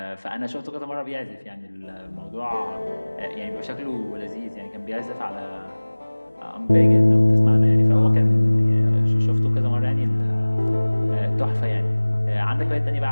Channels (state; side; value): inverted; both; correlation -1.00